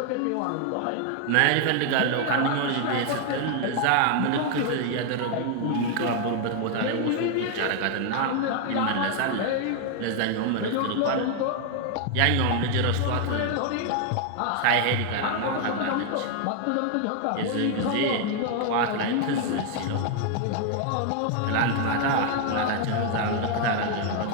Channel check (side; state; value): both; different; correlation 0.00